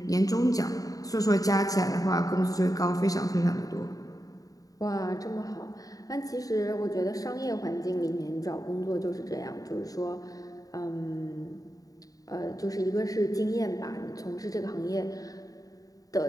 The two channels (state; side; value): late; right; 0.17 ms